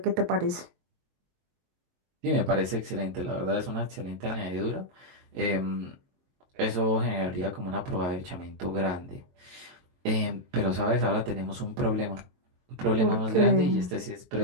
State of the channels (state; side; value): late; left; 22 ms